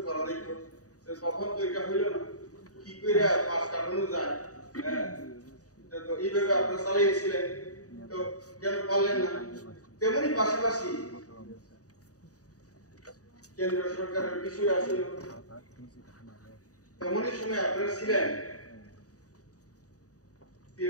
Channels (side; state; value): right; late; 0.66 ms